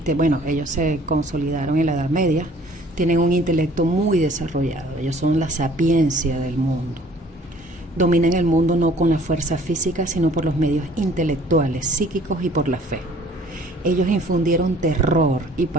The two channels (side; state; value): both; normal; correlation 0.55